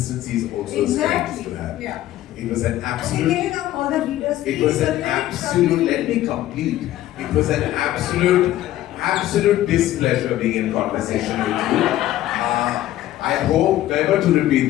is also a strength to have. Yeah. It was an absolute. All the readers, it was an absolute. Let me complete. It was an absolute displeasure being in conversation with you. I hope never to repeat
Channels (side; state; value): right; quieter; 14.0 dB